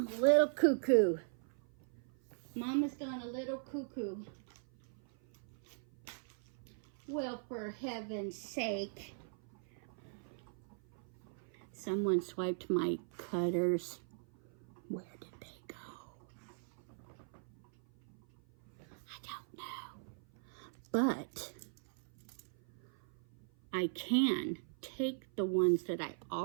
a little cuckoo. Mama's gone a little cuckoo. Well, for heaven's sake. Someone swiped my cutters. Where did they go? I don't know. But I can take the ones that I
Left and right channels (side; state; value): left; silent; 52 dB below the other